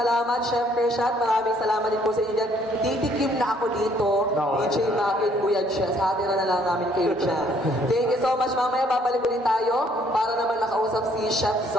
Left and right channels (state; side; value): normal; both; correlation 0.64